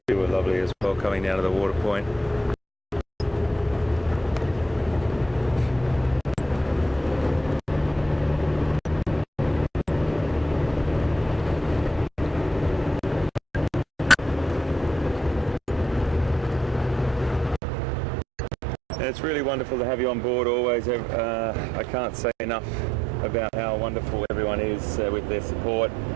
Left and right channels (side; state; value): left; drops out; at 17.6 s